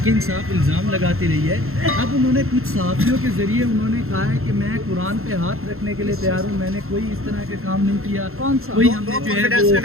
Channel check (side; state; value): left; late; 0.62 ms